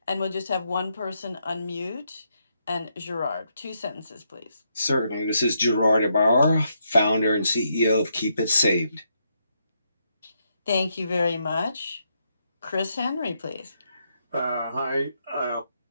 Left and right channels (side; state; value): both; inverted; correlation -0.78